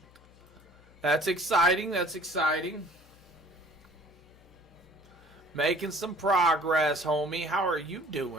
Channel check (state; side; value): noise; left; hum, 25 dB below the sound